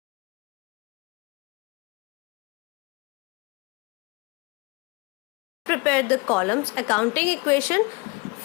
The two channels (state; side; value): quieter; right; 27.2 dB